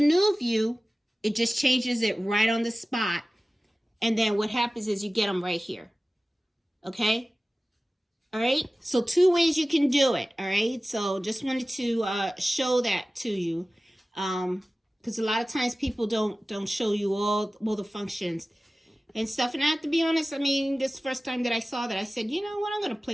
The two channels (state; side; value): normal; both; correlation 0.97